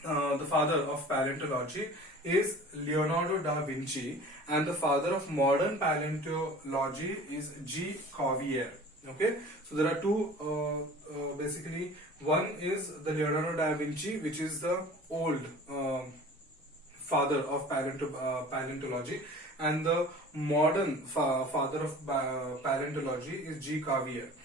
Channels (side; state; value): both; normal; correlation 0.43